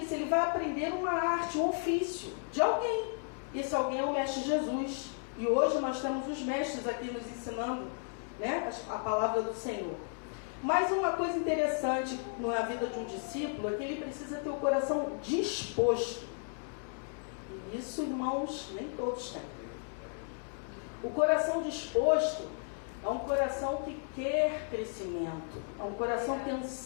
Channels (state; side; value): silent; right; 55 dB below the other